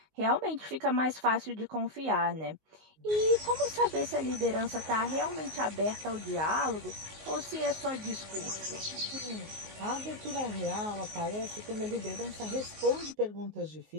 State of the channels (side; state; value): left; late; 19 ms